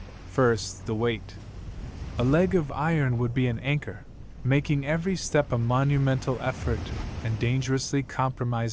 First, the weight. A leg of iron would be an anchor, making every step a monumental effort and dangerously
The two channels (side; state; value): both; identical; correlation 1.00